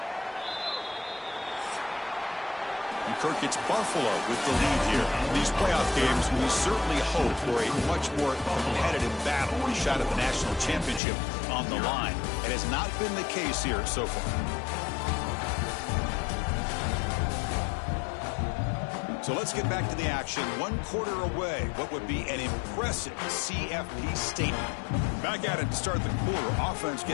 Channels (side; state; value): right; drops out; at 11.0 s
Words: And Kirk gets Buffalo with the lead here. These playoff games, we certainly hope for a much more competitive battle. A shot at the national championship on the line. It has not been the case here so far. So let's get back to the action. 1 quarter away. What would be an impressive CFP statement. Back at it to start the quarter. Offense